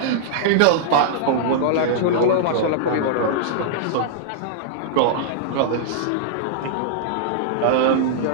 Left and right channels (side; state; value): both; different; correlation -0.02